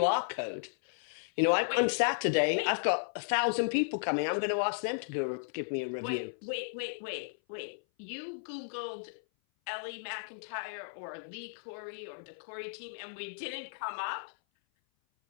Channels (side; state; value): right; silent; 55 dB below the other